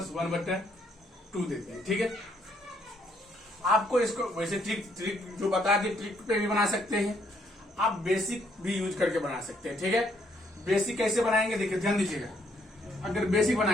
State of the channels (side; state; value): both; normal; correlation 0.70